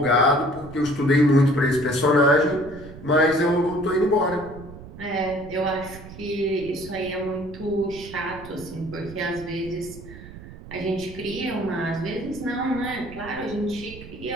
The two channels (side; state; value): right; noise; rumble, 15 dB below the sound